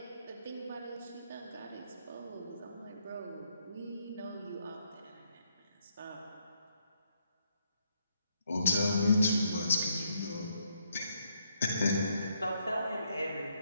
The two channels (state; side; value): inverted; both; correlation -0.74